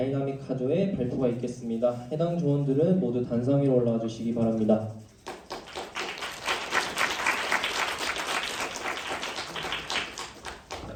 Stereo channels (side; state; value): both; identical; correlation 1.00